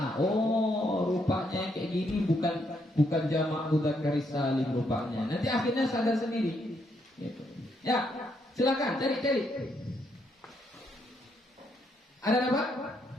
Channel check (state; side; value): normal; both; correlation 0.75